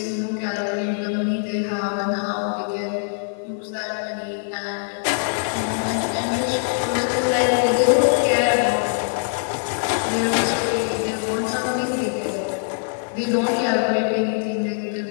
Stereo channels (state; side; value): silent; right; 64 dB below the other